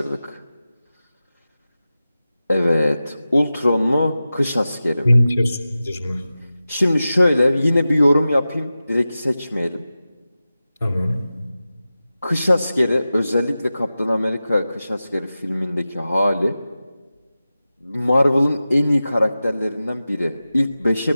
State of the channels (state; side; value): inverted; both; correlation -0.95